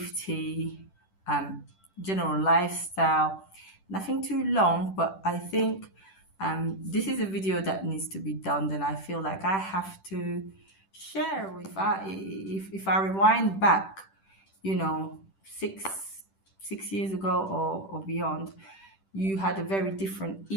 um, general lifestyle. Nothing too long, but I think this is a video that needs to be done. Then I feel like I have to share. If I rewind back, you know, six years ago or beyond, you had a very different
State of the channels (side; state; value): right; late; 10 ms